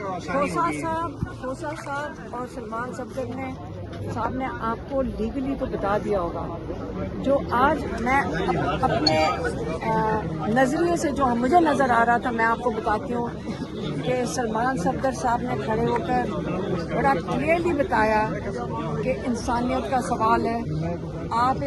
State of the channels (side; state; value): both; identical; correlation 1.00